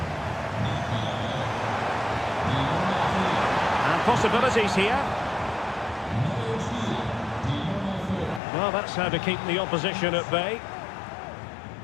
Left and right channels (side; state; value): right; drops out; at 8.4 s